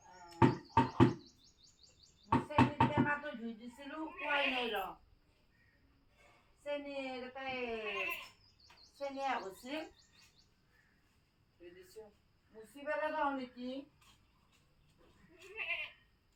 টেমাটো ধুই দিছিলো খোৱাই নাই ৰ চেনি চেনি আগছিল ধুই দিছো মুচি পেলাই যাওঁ নেকি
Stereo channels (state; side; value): identical; both; correlation 1.00